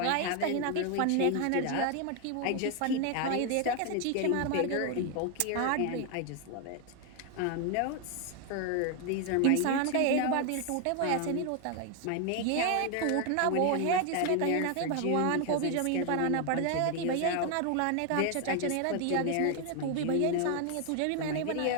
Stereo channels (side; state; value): both; different; correlation 0.01